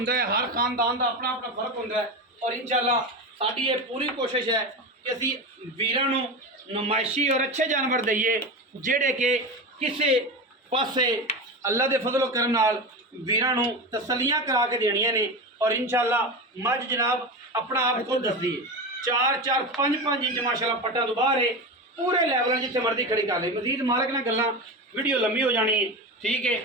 ਹੈ, ਹਰ ਖਾਨਦਾਨ ਦਾ ਆਪਣਾ ਆਪਣਾ ਫਰਕ ਹੁੰਦਾ ਹੈ। ਔਰ ਇੰਸ਼ਾਅੱਲਾ ਸਾਡੀ ਇਹ ਪੂਰੀ ਕੋਸ਼ਿਸ਼ ਹੈ ਕਿ ਅਸੀਂ ਵੀਰਾਂ ਨੂੰ ਨੁਮਾਇਸ਼ੀ ਔਰ ਅੱਛੇ ਜਾਨਵਰ ਦਈਏ, ਜਿਹੜੇ ਕਿ ਕਿਸੇ ਪਾਸੇ ਅੱਲਾ ਦੇ ਫਜ਼ਲ ਕਰਮ ਨਾਲ ਵੀਰਾਂ ਨੂੰ ਤਸੱਲੀਆਂ ਕਰਾ ਕੇ ਦੇਣੀਆਂ ਨੇ। ਔਰ ਇੰਸ਼ਾਅੱਲਾ ਮੱਝ ਜਨਾਬ ਆਪਣਾ ਆਪ ਖੁਦ ਦੱਸਦੀ ਹੈ, 4-4 5-5 ਇੰਚ ਮਾਸ਼ਾਅੱਲਾ ਪੱਟਾਂ ਤੋਂ ਬਾਹਰ ਹੈ, ਪੂਰੇ ਲੈਵਲਾਂ ਜਿੱਥੇ ਮਰਜ਼ੀ ਖੜੀ ਕਰ ਲਈ। ਮਜ਼ੀਦ ਮਾਲਕ ਨਾਲ ਗੱਲਾਂ, ਵੀਡੀਓ ਲੰਮੀ ਹੋ ਜਾਣੀ ਹੈ, ਠੀਕ ਹੈ।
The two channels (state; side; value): normal; both; correlation 0.23